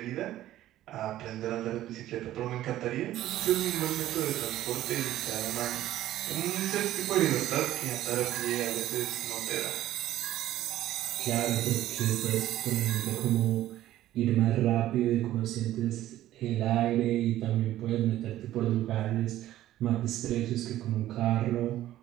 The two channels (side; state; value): left; quieter; 13.8 dB